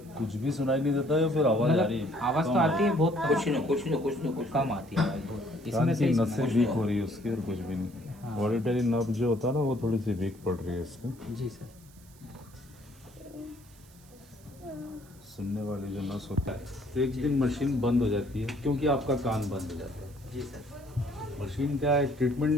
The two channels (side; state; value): right; noise; hiss, 26 dB below the sound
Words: कुछ भी सुनाई नहीं देता है, फिर आवाज आ रही है? आवाज़ तो आती है बहुत कम, कुछ कम आती है आवाज़ बहुत। कान इसमें की से नसें वीक हो रही है उसकी, और कुछ भी नहीं। ऑडिटरी नर्व जो होता है ना, वो थोड़ी सी वीक पड़ रही है इसकी। जी सर। सुनने वाली जो नस होता है, तो एक दिन मशीन बंद हो जाती है क्योंकि आपका कान बंद हो जाता है। जी सर। मशीन क्या है, ट्रीटमेंट